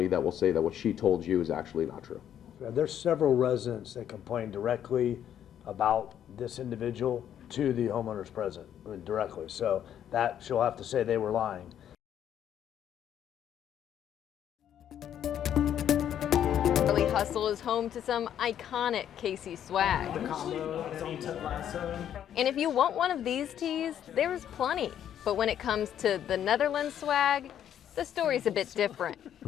that will say that what she told you is actually not true. There's several residents that complain directly about this individual to the homeowner's president, directly. So that she'll have to say they were lying. Charlie Hustle is home to some iconic Casey swag. And if you want one of these tees, there's plenty. But when it comes to the Netherlands swag, the story's a bit different.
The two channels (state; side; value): quieter; right; 10.0 dB